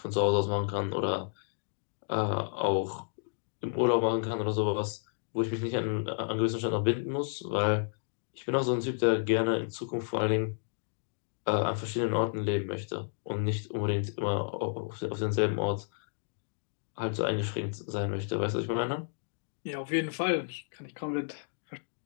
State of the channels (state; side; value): silent; right; digital silence